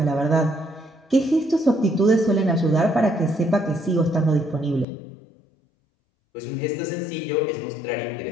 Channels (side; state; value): right; drops out; at 4.9 s